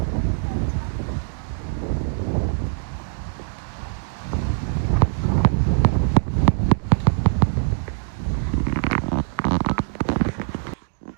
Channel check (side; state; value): left; silent; digital silence